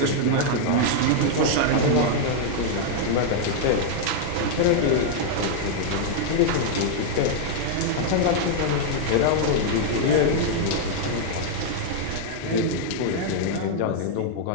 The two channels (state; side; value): different; both; correlation -0.01